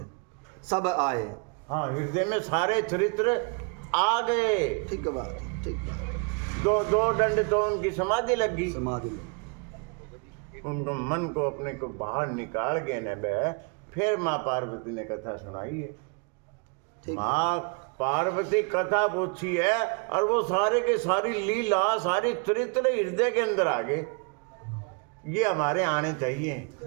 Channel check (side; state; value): left; quieter; 35.1 dB